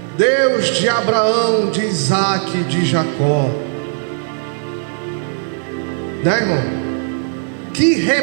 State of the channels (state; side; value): silent; left; digital silence